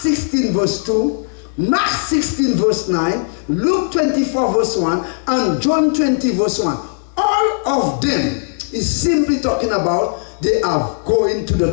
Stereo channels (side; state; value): right; silent; 66 dB below the other